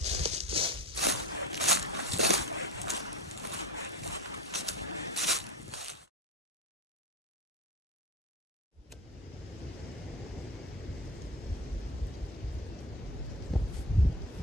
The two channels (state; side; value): normal; both; correlation 0.28